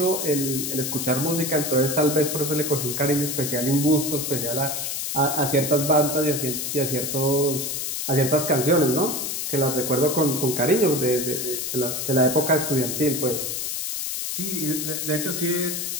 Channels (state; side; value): noise; left; hiss, 3 dB below the sound